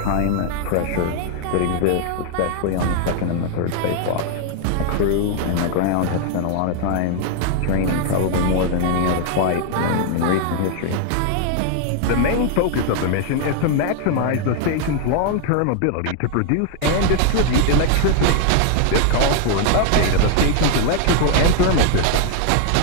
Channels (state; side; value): different; both; correlation 0.00